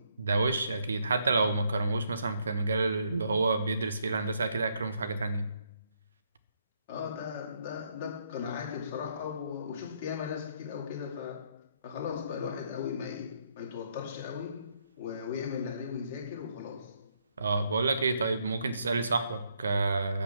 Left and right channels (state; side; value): inverted; both; correlation -0.72